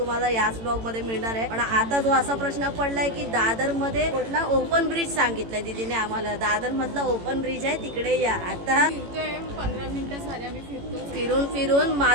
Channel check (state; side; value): late; left; 18 ms